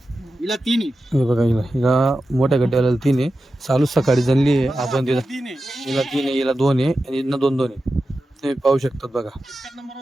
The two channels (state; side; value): normal; both; correlation 0.92